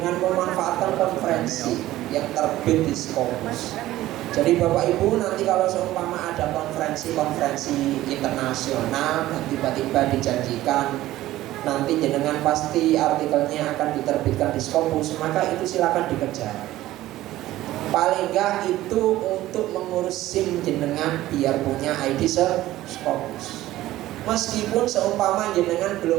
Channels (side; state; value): left; quieter; 15.4 dB